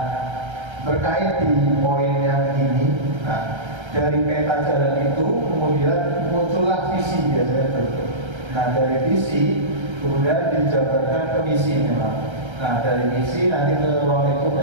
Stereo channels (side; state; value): left; late; 1.3 ms